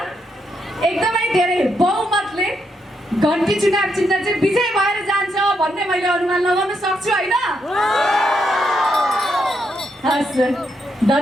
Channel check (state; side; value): normal; both; correlation 0.79